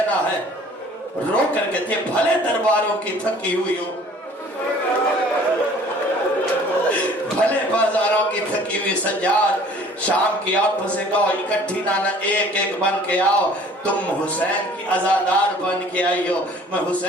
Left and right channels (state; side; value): normal; both; correlation 0.51